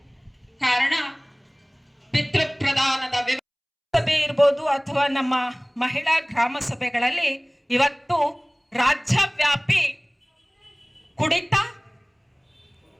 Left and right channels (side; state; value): both; identical; correlation 1.00